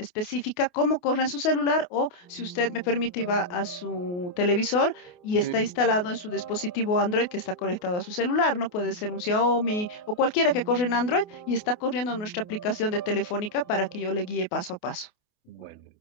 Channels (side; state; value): right; late; 28 ms